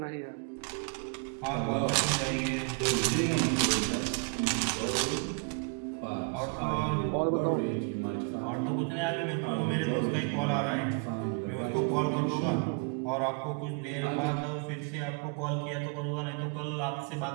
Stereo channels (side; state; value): left; quieter; 34.0 dB